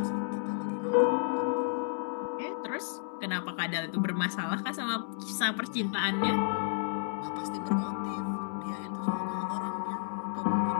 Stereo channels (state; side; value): silent; right; digital silence